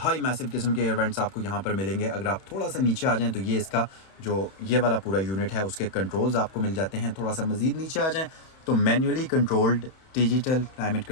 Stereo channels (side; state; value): right; late; 31 ms